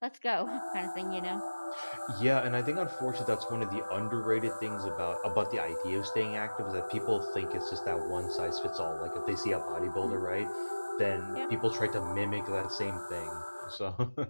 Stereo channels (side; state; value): both; inverted; correlation -1.00